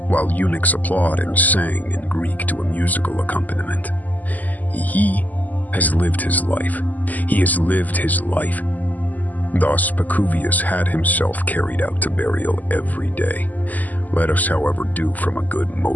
while eunuchs applaud and sang in Greek to a musical accompaniment. He has lived his life. He has lived his life. Thus, Pacuvius had himself carried out to burial every day. Let us, however, do from a good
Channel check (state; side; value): late; right; 0.081 ms